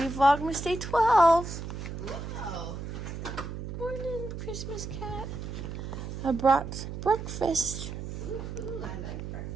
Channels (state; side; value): noise; right; hum, 7 dB below the sound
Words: Vlogmas day 12. Whoa. Morning, Christmas cat. I brought breakfast. Ooh, I like breakfast.